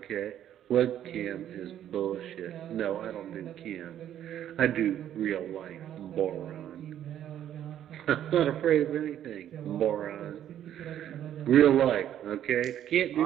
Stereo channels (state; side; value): quieter; left; 10.9 dB